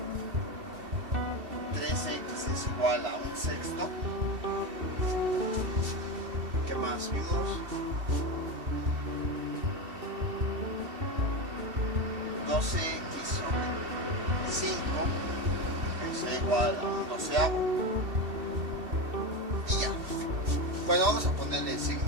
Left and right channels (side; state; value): left; late; 2.7 ms